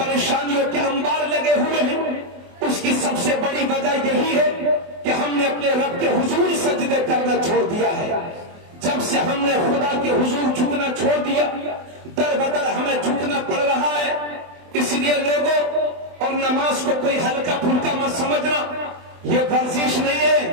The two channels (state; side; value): late; left; 24 ms